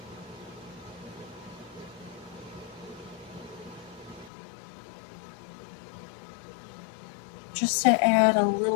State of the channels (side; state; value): right; drops out; at 4.3 s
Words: Just to add a